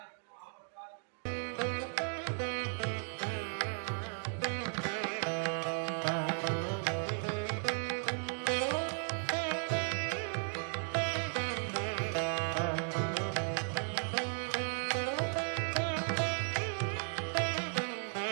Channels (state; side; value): silent; left; 54 dB below the other